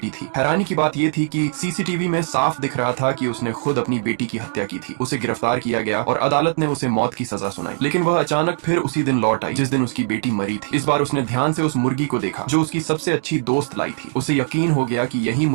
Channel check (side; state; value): left; silent; digital silence